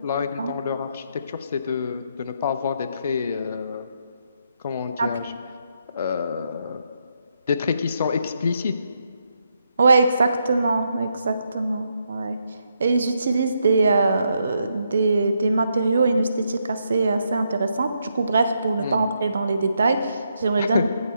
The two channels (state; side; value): inverted; both; correlation -0.79